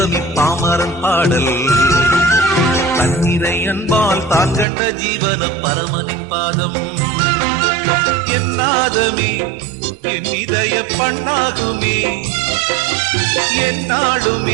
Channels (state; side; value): drops out; left; at 4.7 s